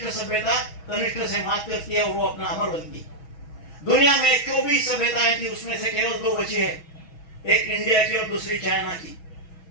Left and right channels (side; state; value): right; late; 6.2 ms